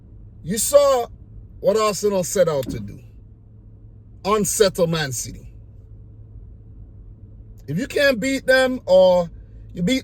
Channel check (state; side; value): identical; both; correlation 1.00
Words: you saw what Arsenal set out to do. Unsettle Man City. If you can't beat them, or you